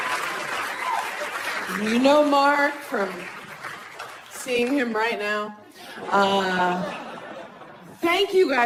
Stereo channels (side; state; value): both; identical; correlation 1.00